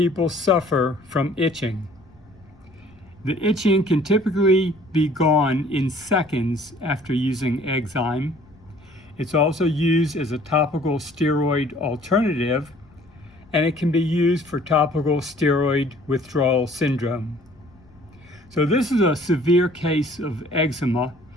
suffer from itching. The itching can typically be gone in seconds after using Eczym. It's also used as a topical steroid alternative, and it can be used for topical steroid withdrawal syndrome. So this is a severe case of eczema.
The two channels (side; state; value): left; noise; rumble, 27 dB below the sound